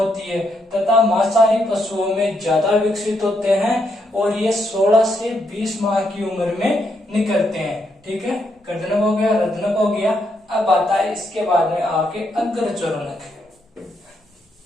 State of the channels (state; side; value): normal; both; correlation 0.78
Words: है। तथा मांसाहारी पशुओं में ज्यादा विकसित होते हैं और ये 16 से 20 माह की उम्र में निकलते हैं। ठीक है, कर्दनक हो गया, रत्नक हो गया। अब आता है इसके बाद में आपके अग्रचोरणक।